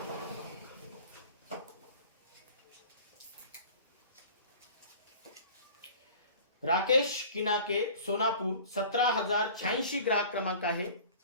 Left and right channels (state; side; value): inverted; both; correlation -0.44